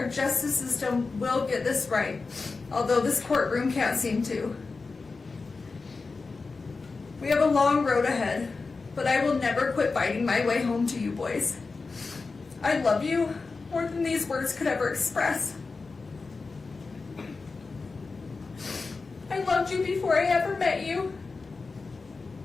justice system will get this right, although this courtroom can't seem to. We have a long road ahead, but I will never quit fighting my way home to you boys. I love you more than these words could ever express. I loved you before I ever met you.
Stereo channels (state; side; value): quieter; right; 4.1 dB